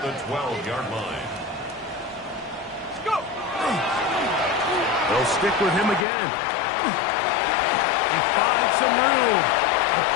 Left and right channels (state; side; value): drops out; right; at 6.1 s